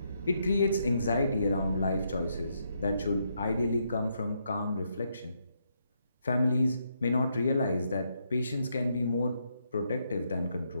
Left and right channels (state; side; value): inverted; both; correlation -0.78